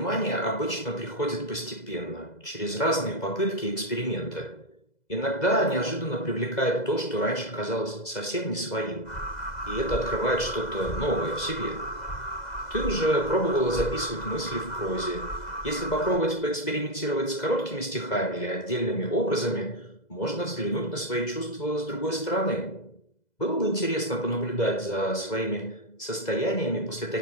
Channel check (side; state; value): right; late; 2.0 ms